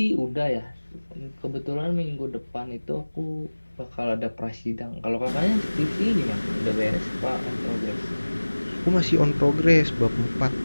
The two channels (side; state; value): both; inverted; correlation -1.00